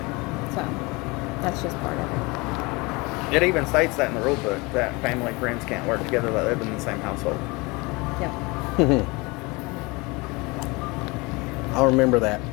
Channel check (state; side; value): quieter; right; 25.4 dB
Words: So that's just part of it. It even states that in the rule book that family friends can't work together that live in the same household. Yeah. I'll remember that.